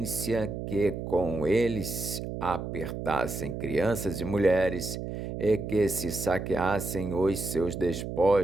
que com eles apertassem crianças e mulheres e que se saqueassem os seus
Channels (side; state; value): right; noise; hum, 6 dB below the sound